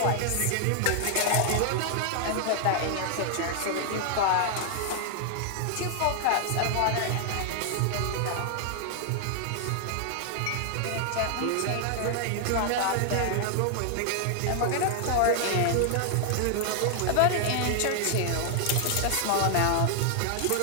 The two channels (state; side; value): different; both; correlation 0.00